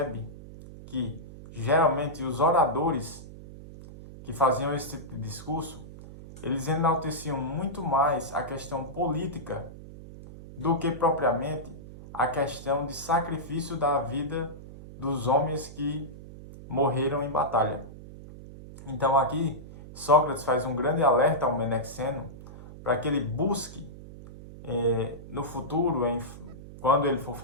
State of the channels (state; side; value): noise; right; hum, 15 dB below the sound